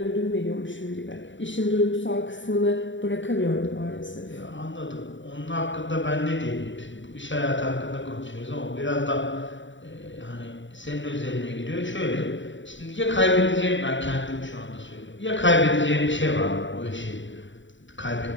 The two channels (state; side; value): late; right; 0.55 ms